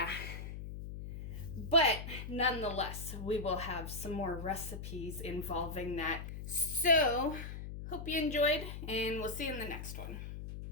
But nonetheless, we will have some more recipes involving that. So, hope you enjoyed, and we'll see you in the next one.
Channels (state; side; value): noise; left; hum, 8 dB below the sound